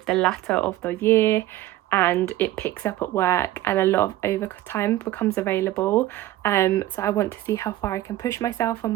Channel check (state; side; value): quieter; left; 15.0 dB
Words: the latter of the year and it picks up at work and a lot of overtime becomes available. So I want to see how far I can push myself on